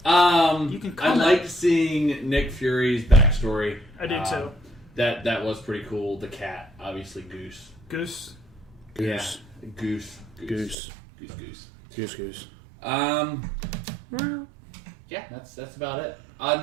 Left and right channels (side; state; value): left; drops out; at 10.8 s